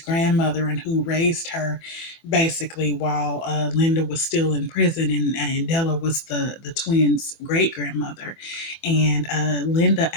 and who raised her basically while Linda was still in prison, and Della was the twins' great grandmother. And Linda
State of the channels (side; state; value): right; late; 24 ms